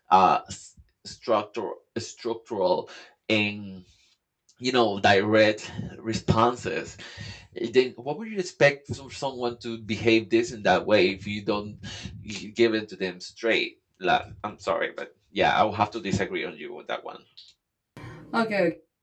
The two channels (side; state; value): both; identical; correlation 1.00